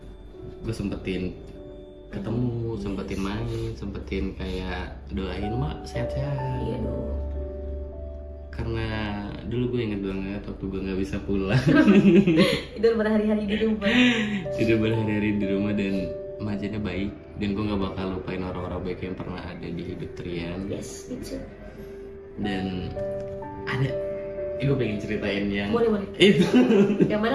gue sempetin ketemu, sempetin main, sempetin kayak doain mak sehat-sehat. Iya dong. karena dulu gue inget banget waktu gue nggak bisa pulang. Tidur berhari-hari di rumah. Tidur berhari-hari di rumah dan Majanya baik, dan gue nggak bakal lupain orang-orang baik yang pernah ada di hidup Trian. Yes, itu. Dan ada, gue pengen ceritain yang Boleh. itu. Yang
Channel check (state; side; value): identical; both; correlation 1.00